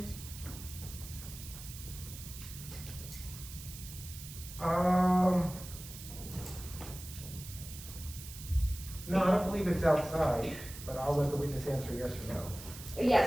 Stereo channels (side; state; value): right; noise; hiss, 13 dB below the sound